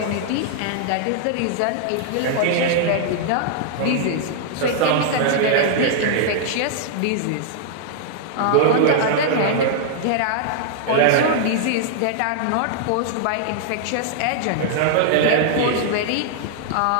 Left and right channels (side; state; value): both; different; correlation -0.01